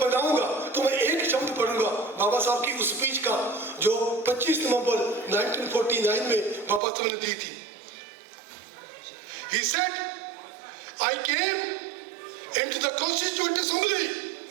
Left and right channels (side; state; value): left; drops out; at 6.8 s